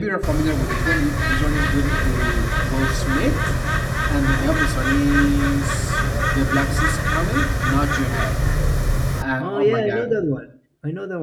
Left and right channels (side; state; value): both; identical; correlation 1.00